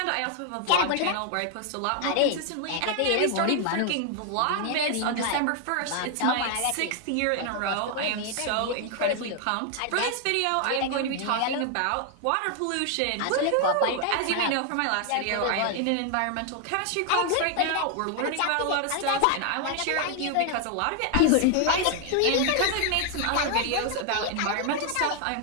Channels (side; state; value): both; different; correlation 0.00